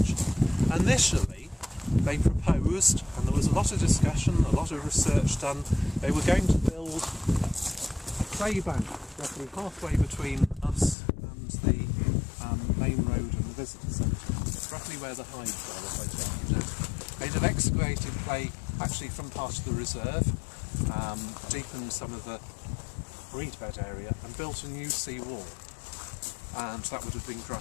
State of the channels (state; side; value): drops out; right; at 11.0 s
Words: initially they proposed, and there was a lot of discussion, a lot of research done, they were going to build a clay bank roughly halfway between us and the main road and the visitor centre. It's roughly where the hives are, if I take you down. They'd have excavated clay actually from part of the reserve, deepened some of the reed bed area and built a new sea wall, and that would have been